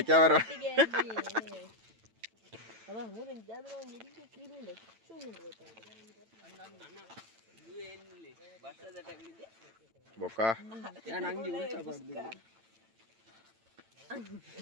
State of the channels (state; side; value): late; left; 9.0 ms